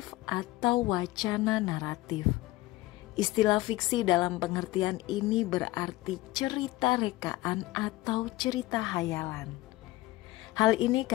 atau wacana naratif. Istilah fiksi dalam pengertian ini berarti cerita rekaan atau cerita hayalan. Hal ini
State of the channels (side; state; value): right; quieter; 18.1 dB